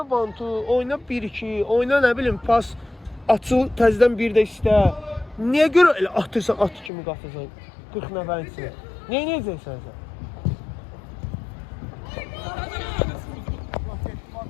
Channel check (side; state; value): right; drops out; at 6.9 s